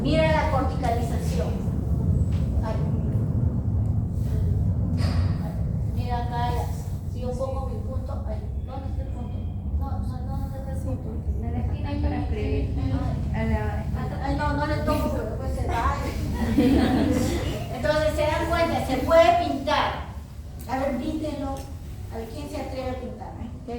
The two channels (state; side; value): identical; both; correlation 1.00